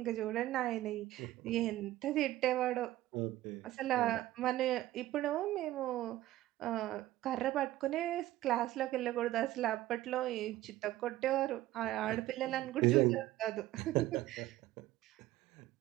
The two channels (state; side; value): quieter; left; 15.5 dB